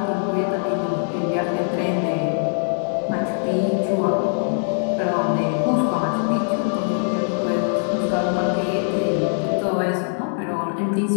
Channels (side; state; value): right; silent; digital silence